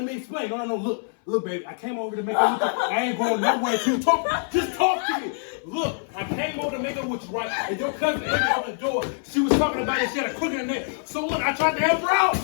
me explain. No. Look, baby. I came over to make up with you. I ain't going nowhere to talk. Just talk to me. Look, I came over to make up with you, right? And your cousin opened the door. She was talking about it. She had a crook in her neck. So look, I tried to help her out.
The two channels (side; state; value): right; silent; 58 dB below the other